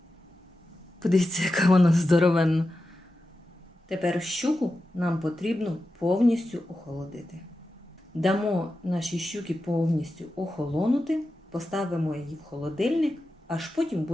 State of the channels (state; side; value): normal; both; correlation 0.91